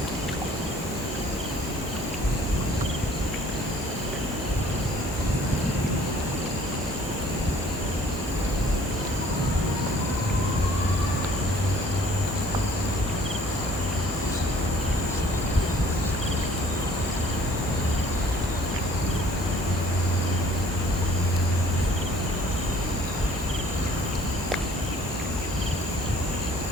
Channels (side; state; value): both; normal; correlation 0.55